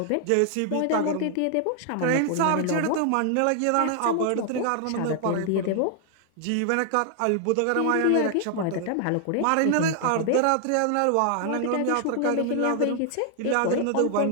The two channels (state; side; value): different; both; correlation 0.00